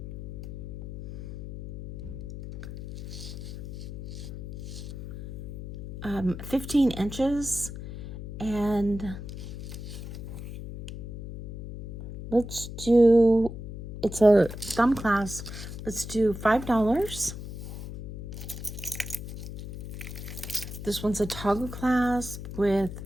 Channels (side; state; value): left; noise; hum, 10 dB below the sound